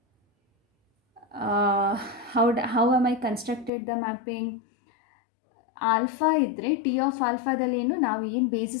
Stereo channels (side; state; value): right; drops out; at 3.7 s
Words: How am I constructed the mapping? Alpha ಇದ್ದರೆ T of ಆಲ್ಫಾದಲ್ಲಿ ನಾವು ಏನು